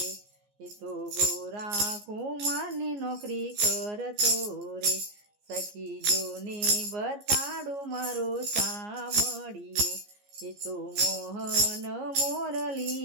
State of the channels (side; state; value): left; late; 14 ms